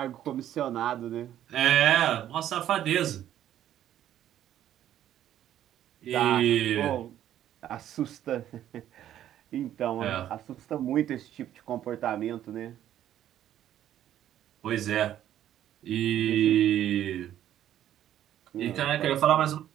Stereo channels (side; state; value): left; quieter; 11.5 dB